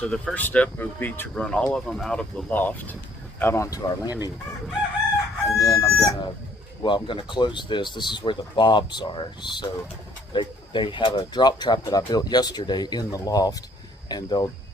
the first step would be to run all of them out of the loft out onto our landing board. And then I'm gonna close this. This is where the bobs are. So they have a drop trap that I built yesterday in the loft, and they'll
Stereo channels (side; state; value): both; normal; correlation 0.62